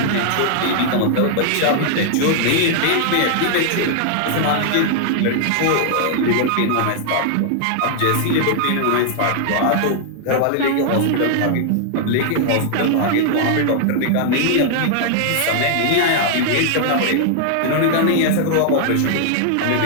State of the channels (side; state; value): both; different; correlation 0.00